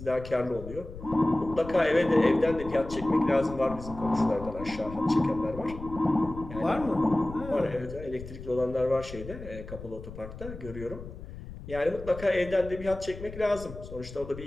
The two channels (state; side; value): noise; left; rumble, 13 dB below the sound